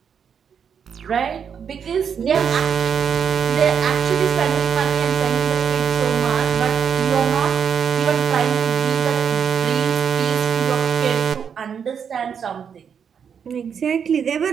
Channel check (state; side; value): quieter; left; 7.3 dB